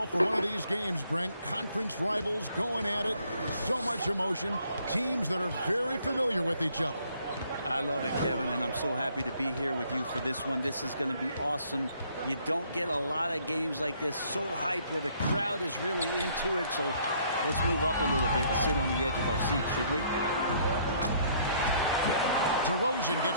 for one of these games, Brent. Conference rivals going at it. So much emotion. Teams that are very familiar with each other. I love it, Kevin, and I'm so happy to be here with you for this one. This is going to be awesome. You don't get a lot of games like this so hyped where the crowd is really into it. So let's move up a little bit and sit on the edge of our seat, should we? DeRozan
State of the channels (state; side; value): inverted; both; correlation -0.64